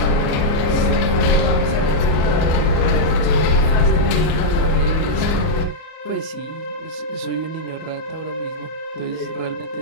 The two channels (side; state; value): right; late; 39 ms